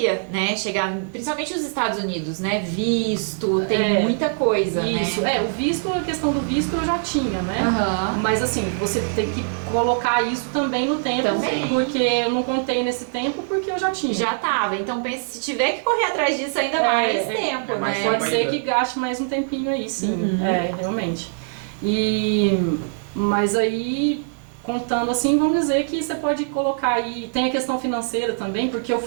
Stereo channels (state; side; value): silent; left; digital silence